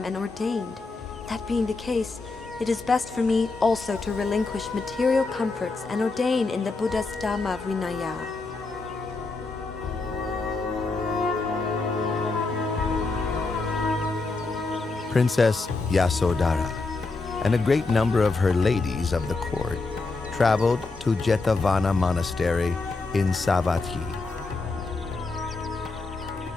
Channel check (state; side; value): quieter; right; 3.7 dB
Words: and ordained. That being the case, it is best for me also to relinquish material comforts and ordain in the Buddha's Dhamma Vinaya. Princess Yasodhara and a great number of her ladies of the court traveled to Jetavana Monastery in Savatthi.